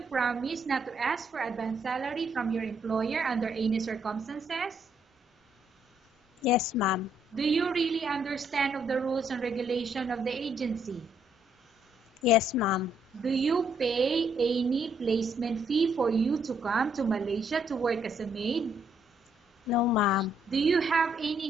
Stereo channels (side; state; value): both; normal; correlation 0.71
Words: promise not to ask for advance salary from your employer under any circumstances? Yes, ma'am. Do you really understand of the rules and regulation of the agency? Yes, ma'am. Do you pay any placement fee for you to come to Malaysia to work as a maid? No, ma'am. Do you have any